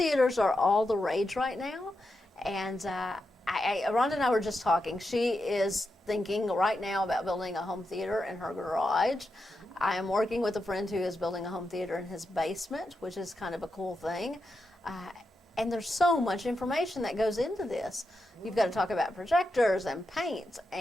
are all the rage right now, and Rhonda and I were just talking. She is thinking right now about building a home theater in her garage. I am working with a friend who is building a home theater in his basement, which is kind of a cool thing. And there's so much information that goes into this. You've got to talk about projectors and paint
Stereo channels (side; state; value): both; normal; correlation 0.87